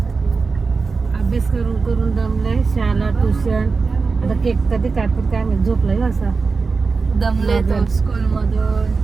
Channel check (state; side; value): quieter; left; 4.5 dB